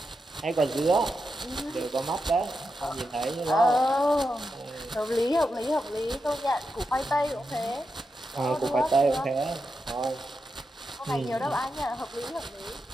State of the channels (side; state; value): both; normal; correlation 0.87